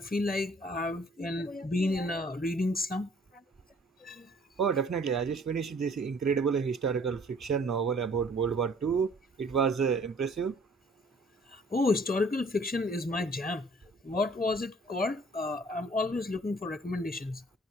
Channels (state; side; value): normal; both; correlation 0.56